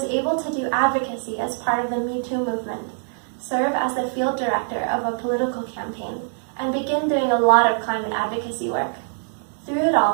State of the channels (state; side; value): silent; left; digital silence